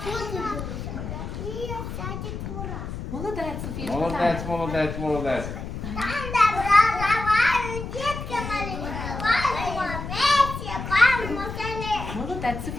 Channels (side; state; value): left; noise; rumble, 7 dB below the sound